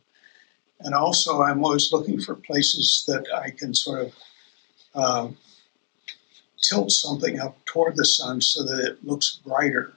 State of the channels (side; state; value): right; silent; digital silence